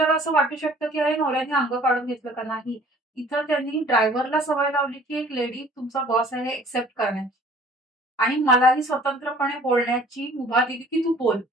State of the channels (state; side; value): normal; both; correlation 0.52